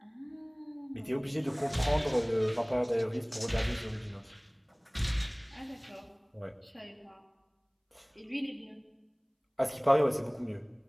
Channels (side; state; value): both; identical; correlation 1.00